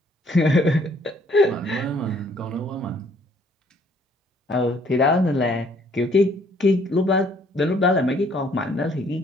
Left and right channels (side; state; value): both; normal; correlation 0.63